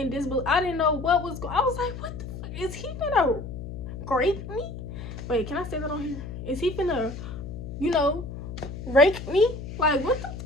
disbelief. I didn't know what was going on. I was like, what the fuck? Is he finna rape me? Wait, can I say that on here? Is he finna, you know, rape me? Like, what the fuck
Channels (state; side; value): noise; left; hum, 9 dB below the sound